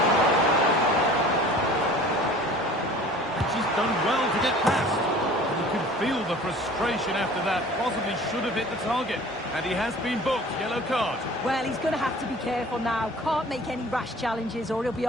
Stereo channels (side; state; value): both; normal; correlation 0.46